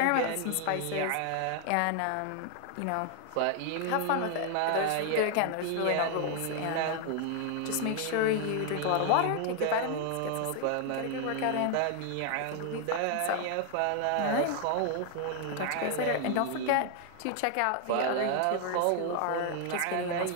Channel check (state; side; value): different; both; correlation 0.00